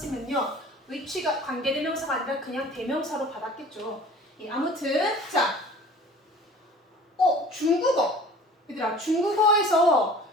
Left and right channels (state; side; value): normal; both; correlation 0.46